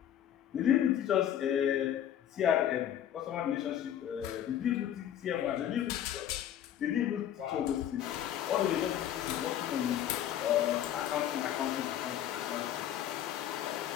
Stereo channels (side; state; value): right; quieter; 10.7 dB